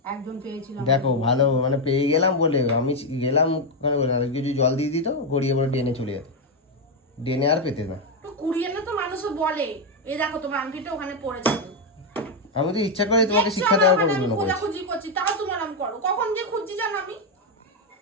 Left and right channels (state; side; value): normal; both; correlation 0.04